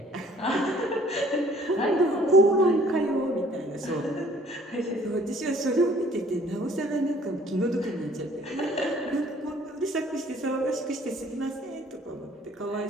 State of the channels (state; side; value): normal; both; correlation 0.56